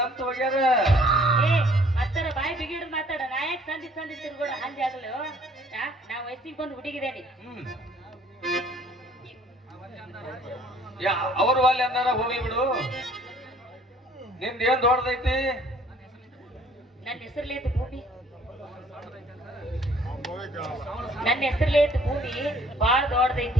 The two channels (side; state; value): both; normal; correlation 0.58